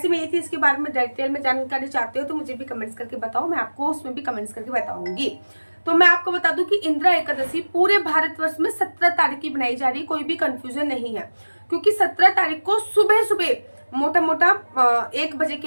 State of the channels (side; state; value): both; inverted; correlation -1.00